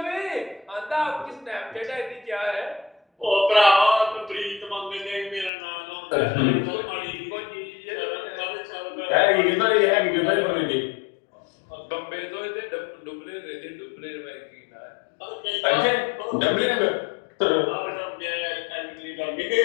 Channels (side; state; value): right; drops out; at 5.5 s